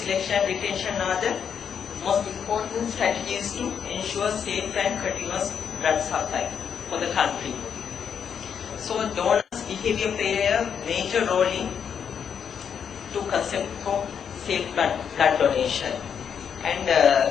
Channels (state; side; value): quieter; right; 7.5 dB